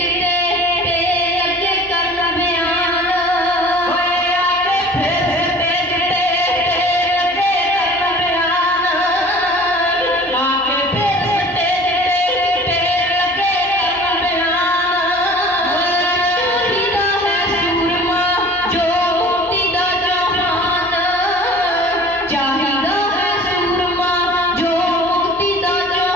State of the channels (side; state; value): both; normal; correlation 0.45